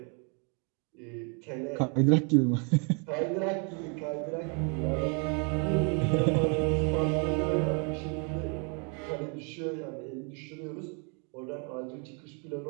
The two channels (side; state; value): left; quieter; 36.8 dB